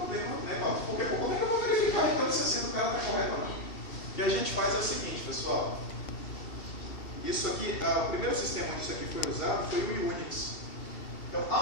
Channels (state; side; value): late; right; 2.7 ms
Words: né, Paulo? Porque como é que eu vou verificar então se a senha do cara está correta ou não? O que a gente faz é o seguinte, pessoal. Isso aqui, o primeiro sistema onde isso aqui foi usado foi o Unix. Então,